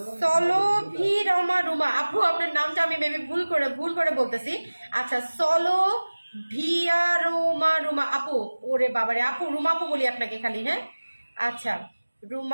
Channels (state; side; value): inverted; both; correlation -1.00